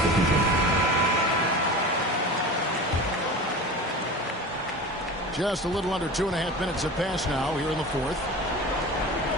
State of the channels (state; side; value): normal; both; correlation 0.33